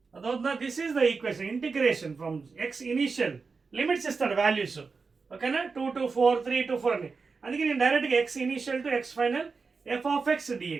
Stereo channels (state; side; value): quieter; left; 4.7 dB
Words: Adotna, this is the equation. Integration from x initial limits is the values. Okay na? 2 to 4, 3 to 4 ani. అందుకే నేను డైరెక్ట్గా x initial to x final f of X